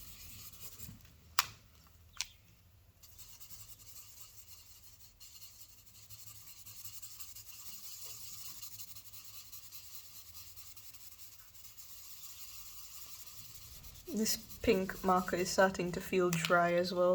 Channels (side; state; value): both; identical; correlation 1.00